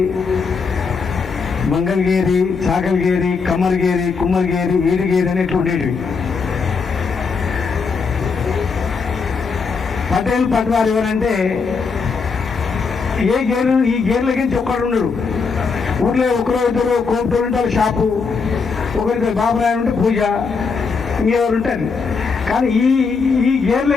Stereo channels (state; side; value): quieter; right; 5.1 dB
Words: మంగళగిరి, చాకల్గేరి, కమ్మర్గేరి, కుమ్మర్గేరి, ఈడిగేరి అని ఎట్లా ఉండేటివి. పటేల్ పట్వారు ఎవరంటే ఏ గేరు, ఈ గేర్లకి ఒక్కడు ఉండడు. ఊర్లో ఒకరో ఇద్దరు కోపటోళ్ళు ఉంటే వాళ్ళ షాపు, ఒకరికి బాబురాయలు ఉంటే పూజ, ఇంకెవరు ఉంటారు. కానీ ఈ